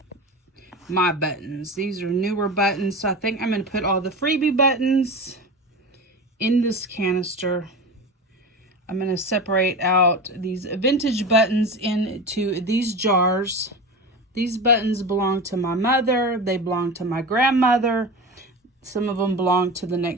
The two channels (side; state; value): both; normal; correlation 0.28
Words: my buttons. These are newer buttons. So I think I'm going to put all the freebie buttons in this canister. I'm going to separate out these vintage buttons into these jars. These buttons belong to my mother. They belong to my grandmother. Some of them belong to the